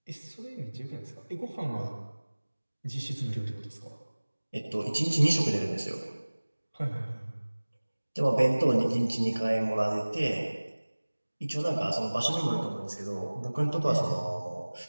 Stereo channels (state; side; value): inverted; both; correlation -1.00